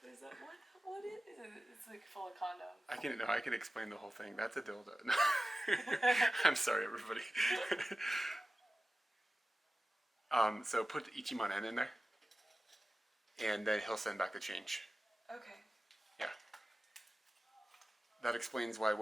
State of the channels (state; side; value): normal; both; correlation 0.95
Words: this up. What is it? It's like full of condoms. I can explain the whole thing. That's a dildo. No. I'm sorry, everybody. So put Ichiman N in there. And then he'll send back the change. Okay. Yeah. That explains why